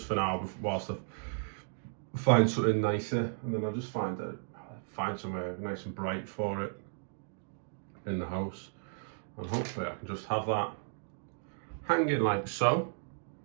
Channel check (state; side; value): silent; left; digital silence